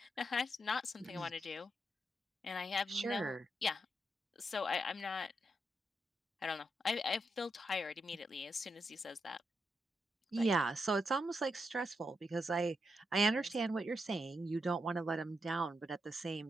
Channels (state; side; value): normal; both; correlation 0.83